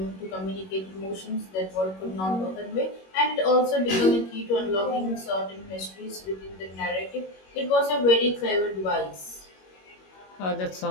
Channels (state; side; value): late; right; 21 ms